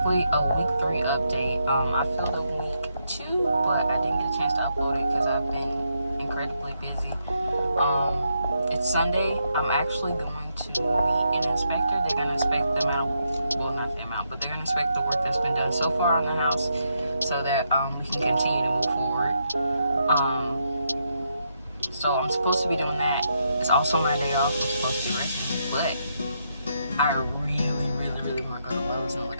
a week 3 update. I feel the week 2, but I didn't get a chance to upload it because I've been incredibly busy. It's Sunday. I'm actually going to meet an inspector. They're going to inspect the amount, well, not the amount, but they're going to inspect the work that's been done so far on the house so that we can continue to move forward. So I'm supposed to be doing that. It's also my day off. I'm supposed to be resting, but I really want to go to Lowe's and look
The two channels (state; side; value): inverted; both; correlation -0.79